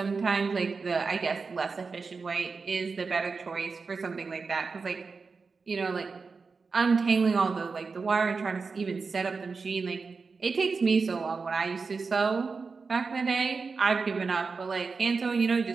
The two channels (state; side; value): quieter; left; 4.6 dB